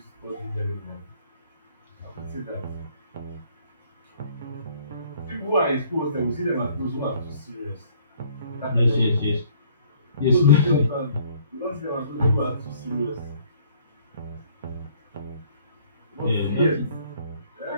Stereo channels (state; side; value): inverted; both; correlation -0.59